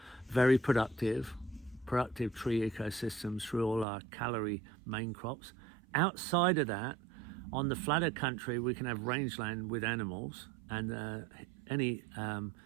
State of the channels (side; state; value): left; drops out; at 3.9 s